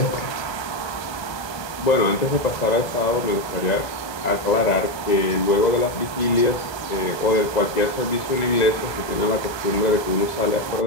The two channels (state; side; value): late; right; 1.3 ms